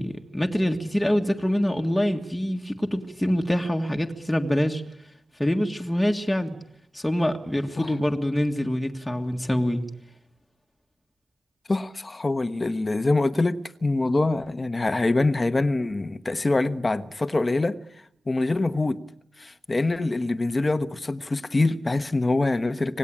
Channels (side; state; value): both; normal; correlation 0.98